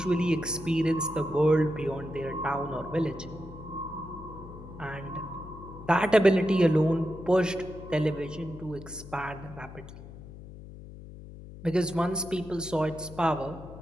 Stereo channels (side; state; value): left; noise; hum, 15 dB below the sound